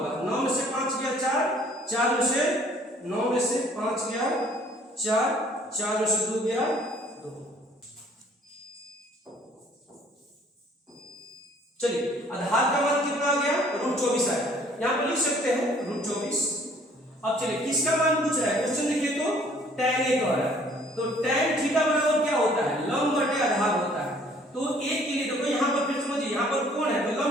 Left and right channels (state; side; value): normal; both; correlation 0.57